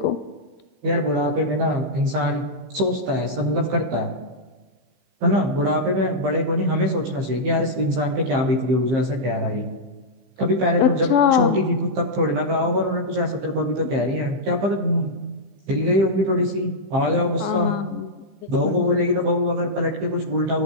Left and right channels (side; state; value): left; late; 15 ms